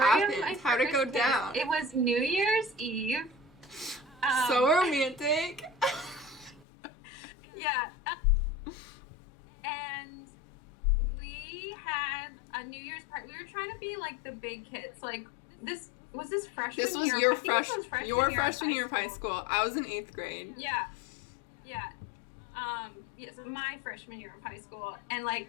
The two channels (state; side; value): drops out; right; at 6.7 s